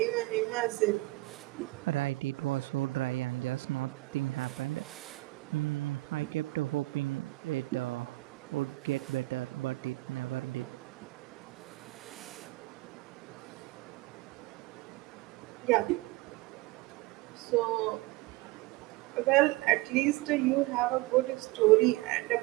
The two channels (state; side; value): quieter; left; 20.8 dB